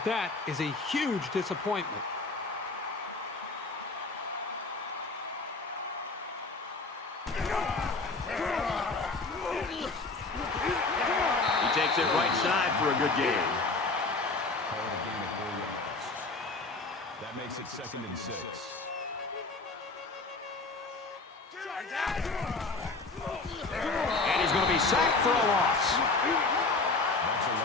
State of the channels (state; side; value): quieter; right; 3.7 dB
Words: that is a huge disappointment. He takes it right side for a good game. Call it a gain of 4 yards. That makes it 2nd and 6. And he's going to be sacked for a loss. That's a